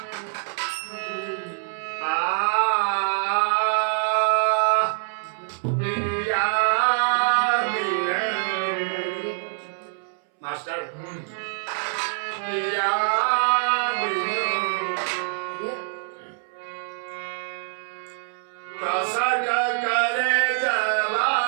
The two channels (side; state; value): left; silent; 62 dB below the other